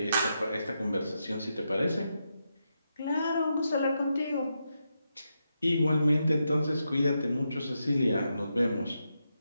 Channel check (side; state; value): both; inverted; correlation -0.85